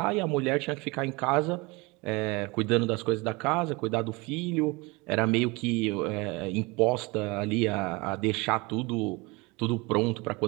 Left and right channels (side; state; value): left; quieter; 25.6 dB